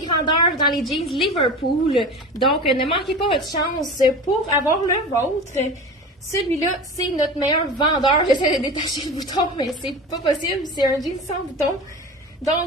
grandeurs dans les jeans Liverpool. Donc, ne manquez pas votre chance pour avoir le vôtre. Celui-là, c'est notre meilleur vendeur. J'essaie de détacher le bouton, mais c'est pas possible. C'est un jean sans bouton.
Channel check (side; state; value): both; normal; correlation 0.32